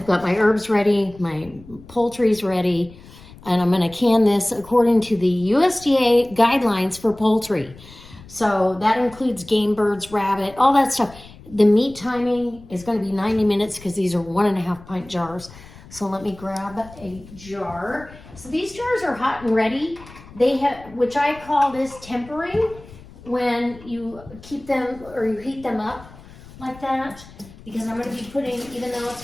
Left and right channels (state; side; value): noise; left; rumble, 20 dB below the sound